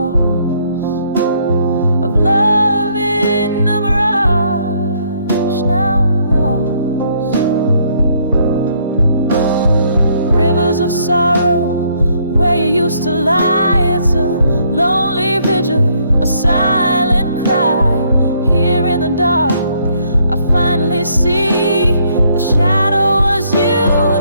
of love in a mirage now lost. Rivers of sorrow where you used to lie. It's a lonely vigil, a silent cry. Here in the dark, I finally see the shadow was you,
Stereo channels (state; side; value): inverted; both; correlation -0.68